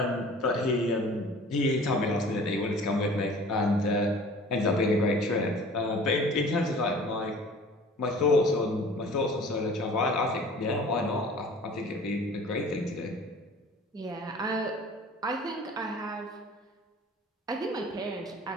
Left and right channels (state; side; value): normal; both; correlation 0.46